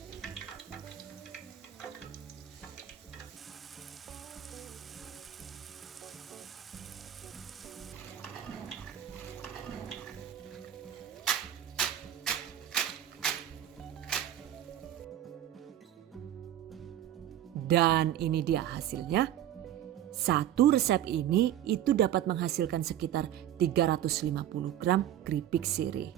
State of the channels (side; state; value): left; quieter; 11.4 dB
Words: Dan ini dia hasilnya. Satu resep ini itu dapat menghasilkan sekitar 350 gram keripik sirih.